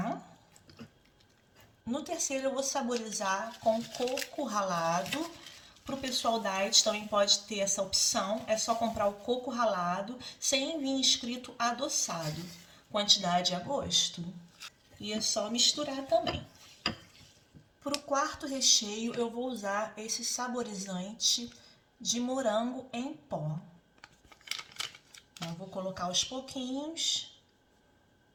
No terceiro eu vou saborizar com coco ralado. Para o pessoal diet também pode ter essa opção, é só comprar o coco ralado sem vir escrito adoçado. Quantidade a gosto. E é só misturar também. Para o quarto recheio eu vou usar esse saborizante de morango em pó. Então, vou colocar aos pouquinhos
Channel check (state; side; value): identical; both; correlation 1.00